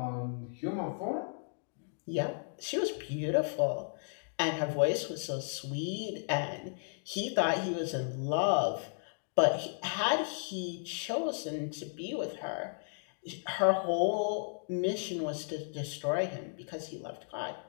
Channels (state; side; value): silent; right; digital silence